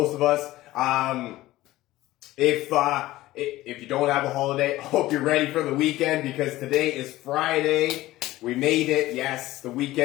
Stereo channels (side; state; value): right; quieter; 16.7 dB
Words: of us. If you don't have a holiday, I hope you're ready for the weekend because today is Friday. We made it. Yes, the